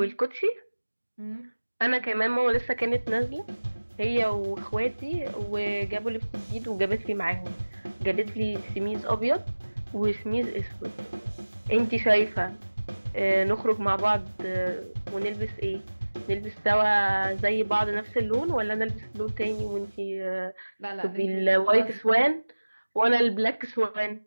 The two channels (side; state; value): both; inverted; correlation -1.00